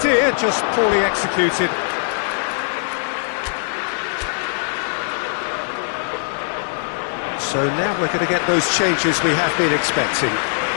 just poorly executed. So now we're going to get those changes we have been expecting.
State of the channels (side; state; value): right; silent; digital silence